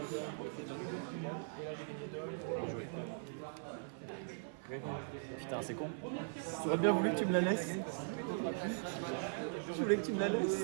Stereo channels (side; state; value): left; silent; 51 dB below the other